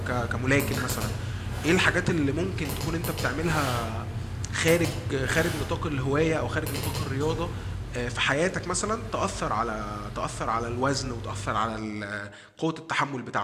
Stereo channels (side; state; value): both; identical; correlation 1.00